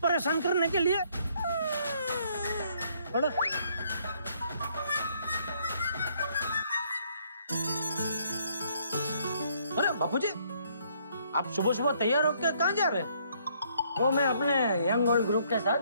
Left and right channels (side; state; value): both; inverted; correlation -0.67